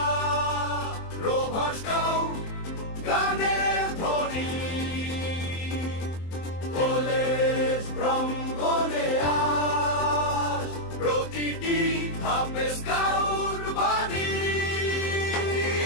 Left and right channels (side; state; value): right; late; 23 ms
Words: rover scout গানের ধ্বনি college প্রাঙ্গণে আজ প্রতিটি ধাপে স্কাউট বাণী।